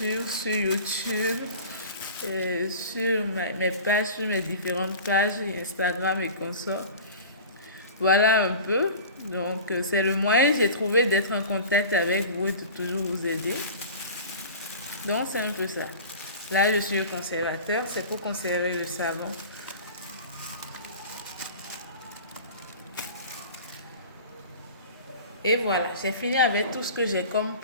sur YouTube, sur mes pages, sur mes différentes pages, Instagram et consorts. Voilà un peu. Donc, c'est le moyen que j'ai trouvé d'être en contact avec vous et de toujours vous aider. Donc, c'est un peu ça. Là, je suis le conservateur. C'est pour conserver le savon. Et voilà, j'ai fini avec tout ce que j'ai comme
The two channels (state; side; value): inverted; both; correlation -0.37